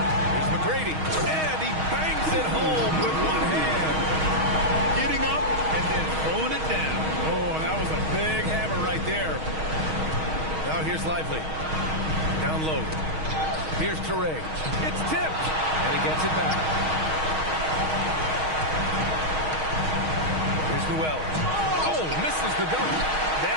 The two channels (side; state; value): left; late; 6.4 ms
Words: Here's McGrady. And he bangs it home with one hand. Getting up and then throwing it down. Oh, that was a big hammer right there. Now here's Lively. Down low. Here's Traore. It's tipped. And he gets it back. Here's Newell. Oh, misses the dunk.